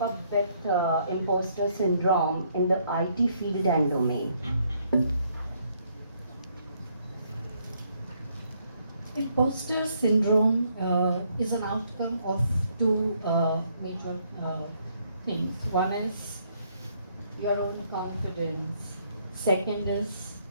up with imposter syndrome in the IT field and domain? Imposter syndrome is an outcome of two major things. One is your own confidence. Second is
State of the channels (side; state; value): both; inverted; correlation -0.70